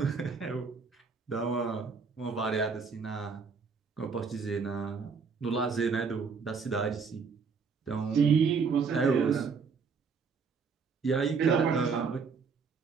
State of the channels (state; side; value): quieter; left; 5.4 dB